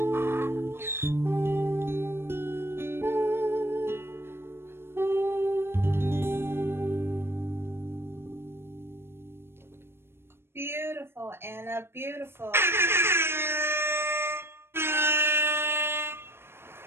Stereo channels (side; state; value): left; late; 0.12 ms